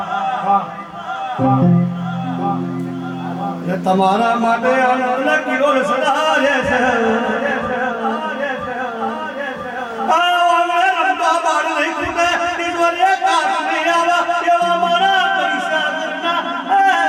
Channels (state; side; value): identical; both; correlation 1.00